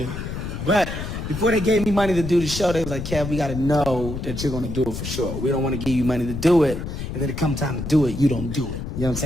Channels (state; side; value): noise; left; rumble, 6 dB below the sound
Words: But before they gave me money to do the show, they was like, Kev, we gotta know that you're gonna do it for sure. We don't wanna give you money to do it, and then it come time to do it, you don't do it. You know what I'm